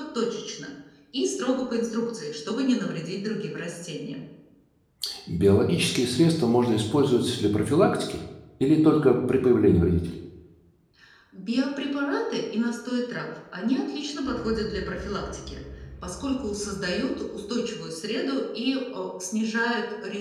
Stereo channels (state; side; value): identical; both; correlation 1.00